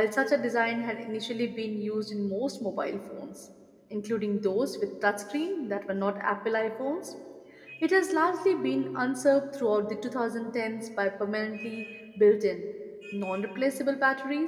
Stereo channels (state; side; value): identical; both; correlation 1.00